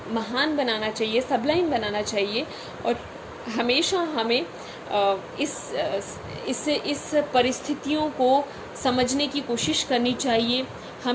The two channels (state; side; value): identical; both; correlation 1.00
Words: महान बनाना चाहिए, सबलाइन बनाना चाहिए, और हमेशा हमें इस परिस्थितियों को समझने की कोशिश करनी चाहिए.